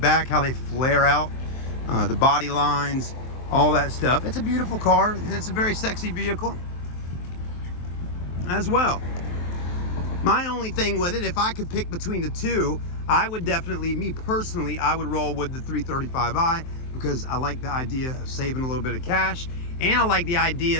how they flare out, the body lines, all that stuff. It's a beautiful car, and it's a very sexy vehicle as well. My only thing with it, if I could pick between the two, I would definitely, me personally, I would roll with the 335i because I like the idea of saving a little bit of cash, and I like the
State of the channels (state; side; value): late; right; 23 ms